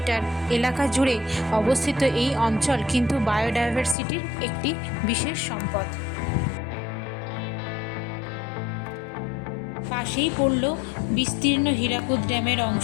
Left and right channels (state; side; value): drops out; right; at 4.0 s